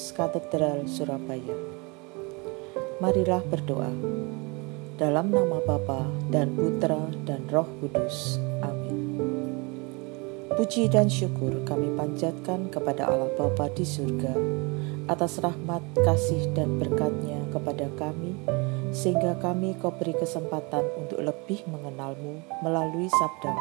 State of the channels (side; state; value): left; quieter; 29.1 dB